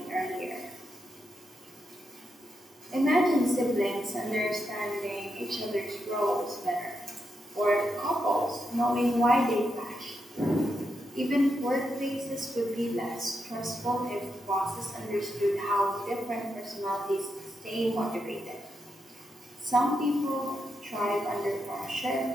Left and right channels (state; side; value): normal; both; correlation 0.84